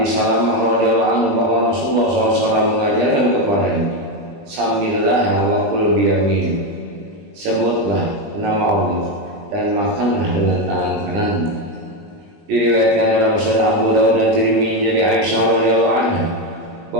Salamah radhiyallahu anhu bahwa Rasulullah SAW mengajarkan kepadanya, Samillah wa kul biyamin, sebutlah nama Allah dan makanlah dengan tangan kananmu. Diriwayatkan dalam Sunan Abu Dawud dan Tirmidzi dari Aisyah radhiyallahu anha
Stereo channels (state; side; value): late; left; 20 ms